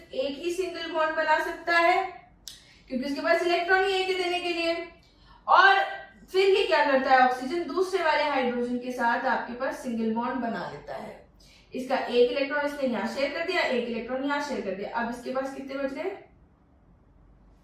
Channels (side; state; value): both; identical; correlation 1.00